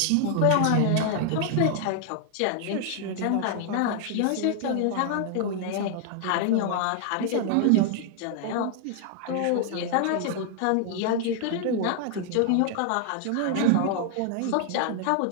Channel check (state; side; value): different; both; correlation 0.00